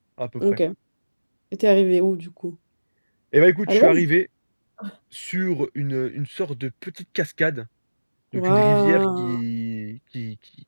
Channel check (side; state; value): both; inverted; correlation -1.00